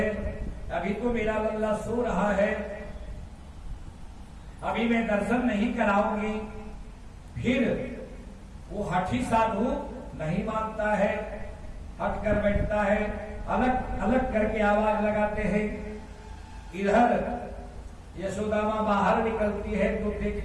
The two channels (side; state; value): both; identical; correlation 1.00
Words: अभी तो मेरा लल्ला सो रहा है, अभी मैं दर्शन नहीं कराऊंगी। फिर वो हठी साधु नहीं मानता है, हट कर बैठता है, अलग अलग करके आवाज लगाते हैं। इधर यशोदा मां बाहर निकलती है तो